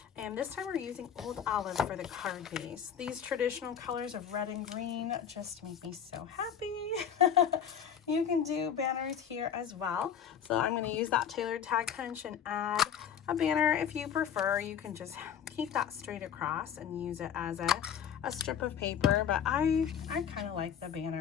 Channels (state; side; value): quieter; right; 8.4 dB